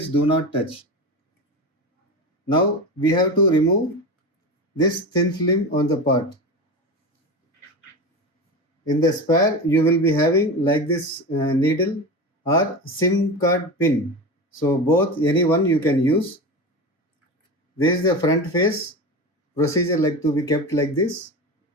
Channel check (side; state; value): both; normal; correlation 0.24